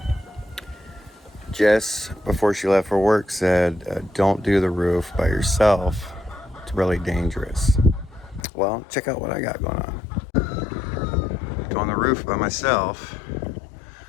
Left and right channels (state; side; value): drops out; right; at 8.5 s